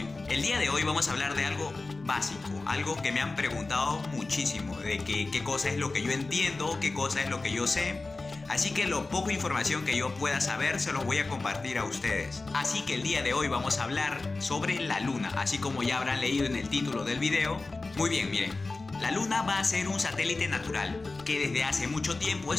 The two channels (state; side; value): quieter; right; 3.5 dB